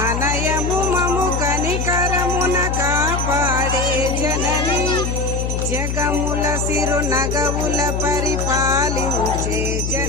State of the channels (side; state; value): left; noise; hum, 2 dB below the sound